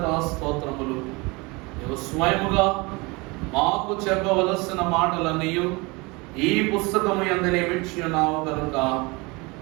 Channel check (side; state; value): left; quieter; 26.0 dB